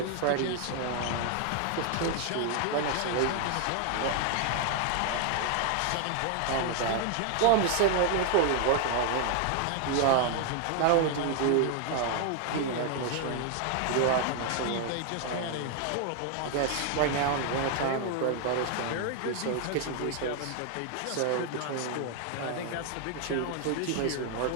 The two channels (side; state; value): both; different; correlation 0.00